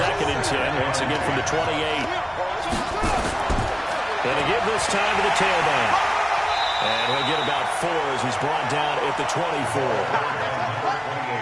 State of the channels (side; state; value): both; identical; correlation 1.00